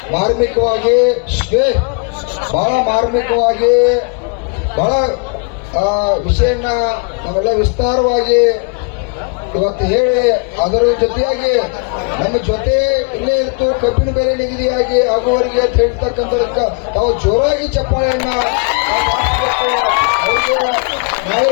ಮಾರ್ಮಿಕವಾಗಿ ಬಹಳ ವಿಷಯನ ಇವೆಲ್ಲ ವಿಸ್ತಾರವಾಗಿ ಇವತ್ತು ಹೇಳಿ, ಅದರ ಜೊತೆಯಾಗಿ ನಮ್ಮ ಜೊತೆ ಇಲ್ಲೇ ಇತ್ತು ಕಬ್ಬಿನ ಬೆಲೆ ನಿಗದಿಯಾಗಿ ಆಗುವವರಿಗೆ ಅಂತ ಹೇಳ್ತಕ್ಕಂಥದಕ್ಕೆ ತಾವು ಜೋರಾಗಿ ಚಪ್ಪಾಳೆಯನ್ನ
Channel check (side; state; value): right; quieter; 37.1 dB